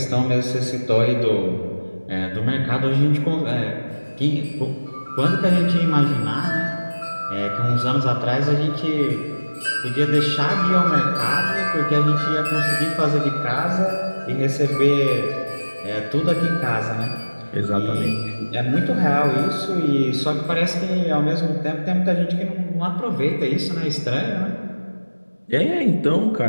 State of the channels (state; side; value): inverted; both; correlation -1.00